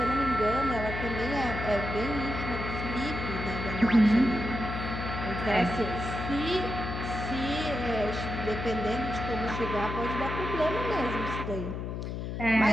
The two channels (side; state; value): left; noise; hum, 5 dB below the sound